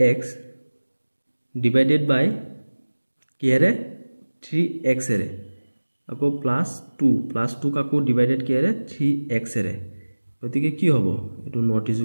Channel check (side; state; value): both; inverted; correlation -1.00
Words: divided by কিহেৰে 3x এৰে আকৌ প্লাস 2 কাকো ডিভাইডেড কিহেৰে 3x এৰে গতিকে কি হ'ব এটো নট